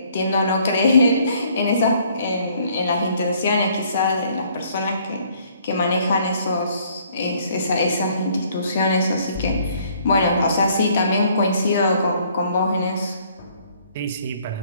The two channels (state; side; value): inverted; both; correlation -0.62